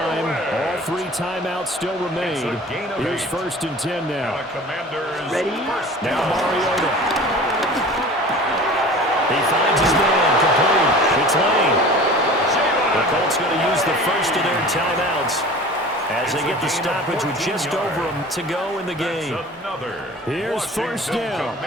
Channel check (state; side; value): normal; both; correlation 0.41